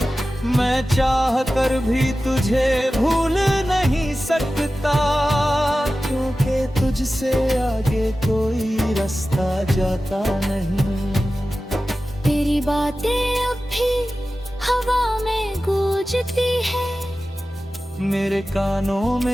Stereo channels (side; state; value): both; normal; correlation 0.95